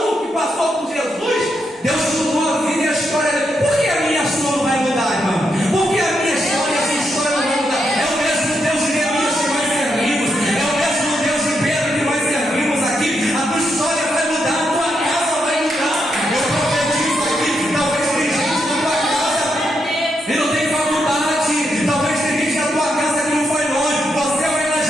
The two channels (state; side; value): normal; both; correlation 0.81